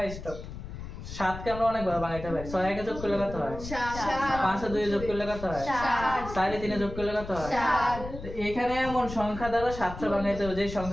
স্টপ। 7 কে আমরা অনেকবার ভাঙাইতে পারি। 6 এ যোগ করলে কত হয়? 7। 5 এ 2 যোগ করলে কত হয়? 7। 4 এ 3 যোগ করলে কত হয়? 7। তো এখানে এমন সংখ্যা দ্বারা 700 ভাঙাইতে হবে যে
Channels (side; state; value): left; noise; rumble, 10 dB below the sound